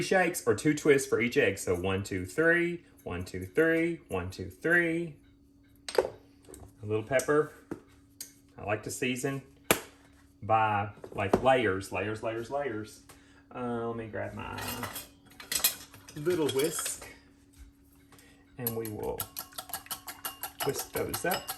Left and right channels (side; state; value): both; identical; correlation 1.00